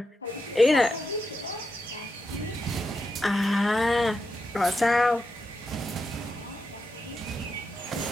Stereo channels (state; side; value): normal; both; correlation 0.85